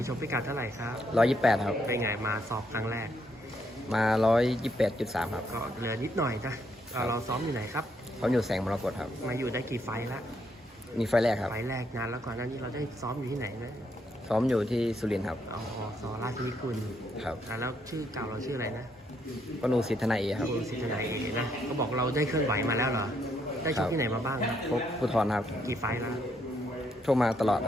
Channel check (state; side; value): normal; both; correlation 0.75